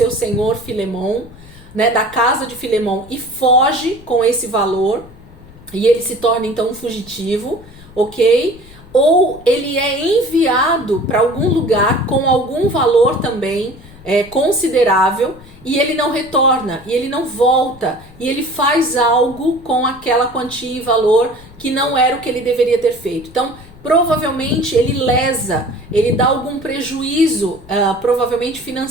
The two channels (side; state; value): left; noise; rumble, 21 dB below the sound